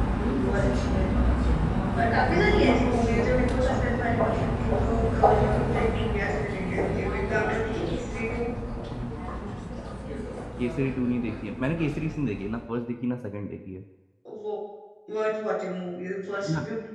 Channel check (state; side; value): identical; both; correlation 1.00